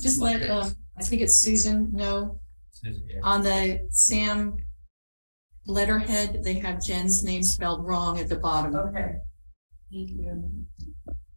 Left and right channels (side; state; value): both; inverted; correlation -1.00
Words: let, I think it's Susan know, on the SAM letterhead, they have Jen's name spelled wrong at the bottom. Okay.